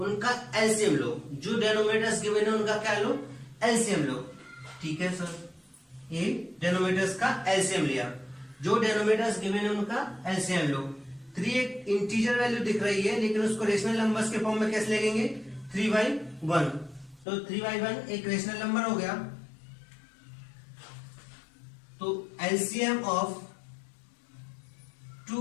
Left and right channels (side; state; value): right; drops out; at 17.2 s